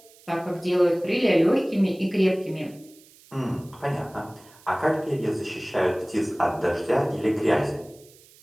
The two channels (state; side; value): noise; right; hiss, 26 dB below the sound